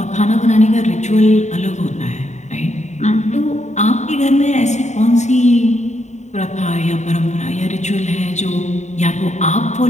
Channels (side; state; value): right; late; 0.34 ms